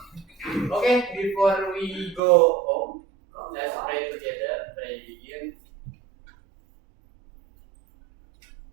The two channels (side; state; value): left; drops out; at 2.2 s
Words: Oke, before we go home, let's pray together. Pray begin.